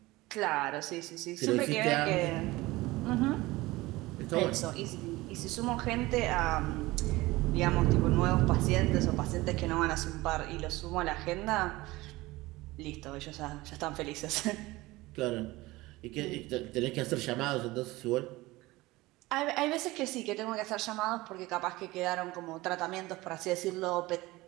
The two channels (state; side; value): quieter; left; 19.9 dB